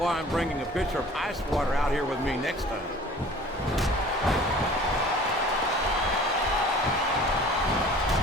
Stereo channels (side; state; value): both; normal; correlation 0.47